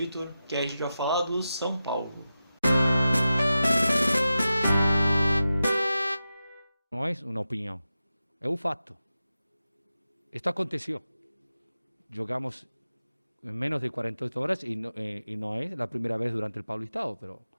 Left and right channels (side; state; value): both; inverted; correlation -0.92